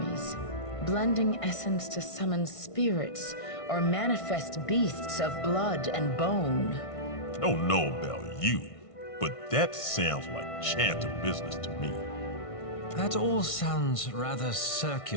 blending essence to summon spirits or manifest beasts of blood and bone. Don't know about you, but that sounds like chanter business to me. That all sounds rather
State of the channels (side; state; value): right; late; 1.5 ms